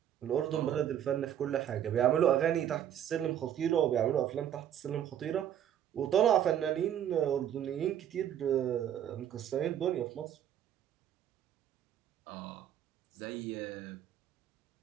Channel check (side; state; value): left; quieter; 10.3 dB